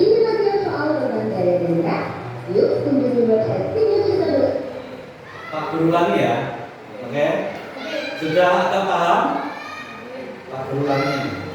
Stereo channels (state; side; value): identical; both; correlation 1.00